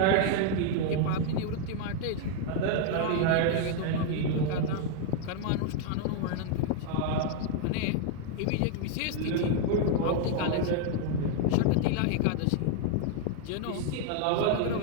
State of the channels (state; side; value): different; both; correlation 0.00